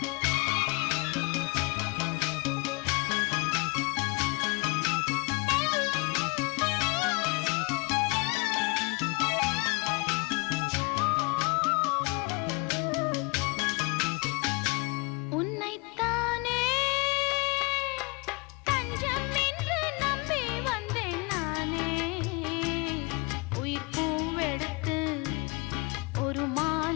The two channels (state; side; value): quieter; right; 29.3 dB